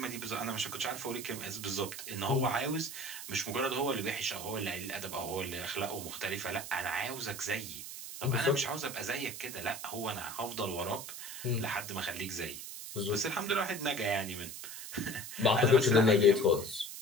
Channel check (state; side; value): noise; right; hiss, 9 dB below the sound